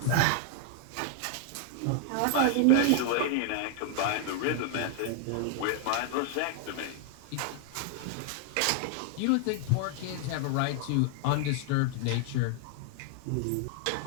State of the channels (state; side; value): different; both; correlation 0.00